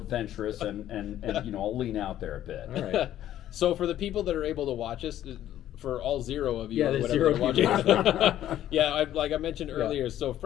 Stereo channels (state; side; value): quieter; right; 12.2 dB